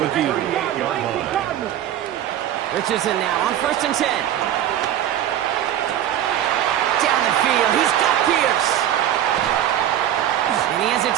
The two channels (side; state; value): left; quieter; 11.4 dB